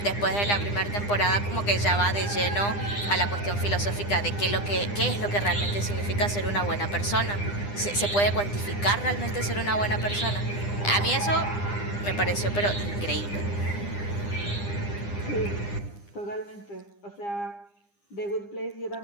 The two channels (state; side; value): late; right; 9.9 ms